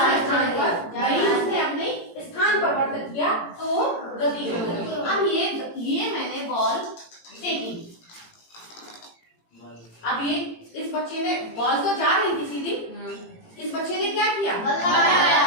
पर उसने अपने स्थान परिवर्तित किया तो वो गति हो गई। अब ये मैंने बॉल फेंकी, अब ये इस बच्चे ने बॉल तो जा रही थी सीधी, इस बच्चे ने क्या किया? बल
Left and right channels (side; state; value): right; late; 18 ms